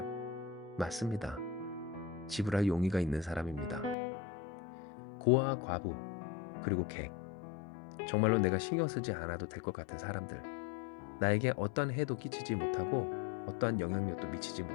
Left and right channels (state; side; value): drops out; right; at 4.0 s